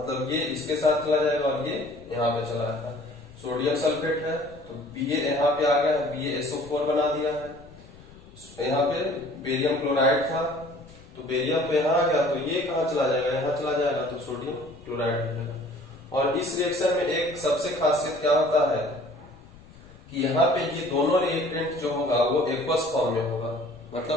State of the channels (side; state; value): left; noise; rumble, 22 dB below the sound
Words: ये इसके साथ चला जाएगा और ये यहाँ पे चला जाएगा। सोडियम सल्फेट है तो Ba यहाँ पे आ गया है, BaSO4 बना दिया है। यहाँ पे बेरियम क्लोराइड था तो बेरियम तो यहाँ आ गया, तो ये कहाँ चला जाएगा? यहाँ चला जाएगा, तो सोडियम क्लोराइड हो जाएगा। और इस रिएक्शन में एक सबसे खासियत क्या होता है कि यहाँ पे ये दोनों रिएक्टेंट जो होगा वो एक्वस फॉर्म में होगा,